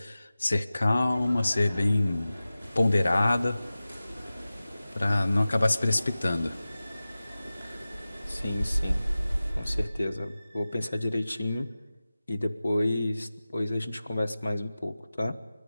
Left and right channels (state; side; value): inverted; both; correlation -0.97